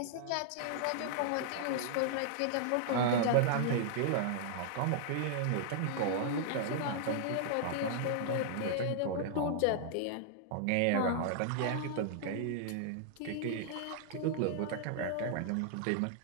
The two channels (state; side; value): different; both; correlation -0.01